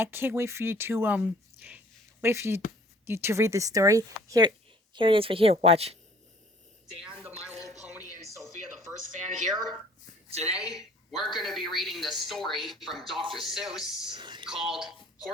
can't wait for you to you to read the story. Here it is right here. Watch. Dan, the My Little Pony, and Sophia, the first fan here. Today, we're going to be reading the story from Dr. Seuss called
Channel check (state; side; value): normal; both; correlation 0.54